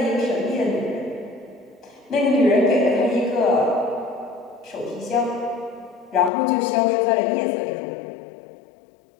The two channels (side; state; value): right; drops out; at 6.3 s